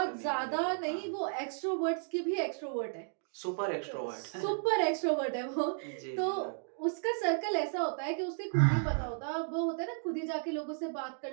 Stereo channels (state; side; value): silent; left; digital silence